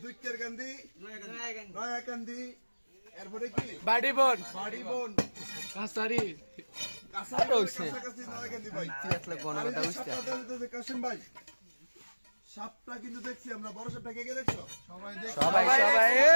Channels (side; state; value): both; inverted; correlation -1.00